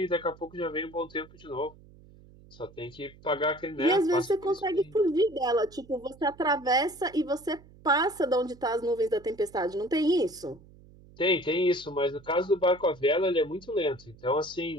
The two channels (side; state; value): right; noise; hum, 23 dB below the sound